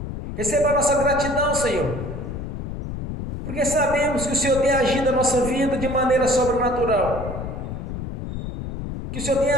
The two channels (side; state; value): left; noise; rumble, 7 dB below the sound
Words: Receba a nossa gratidão, Senhor, porque sabemos que o Senhor tem agido na nossa vida de maneira sobrenatural, que o Senhor tem